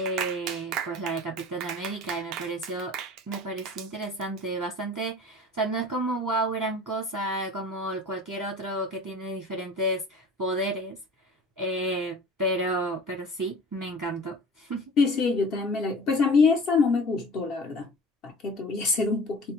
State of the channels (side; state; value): both; normal; correlation 0.41